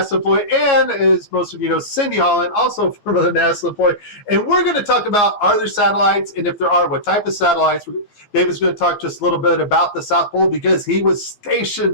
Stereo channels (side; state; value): right; late; 15 ms